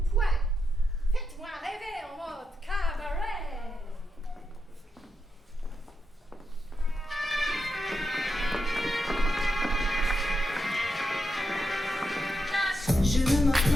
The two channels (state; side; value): normal; both; correlation 0.85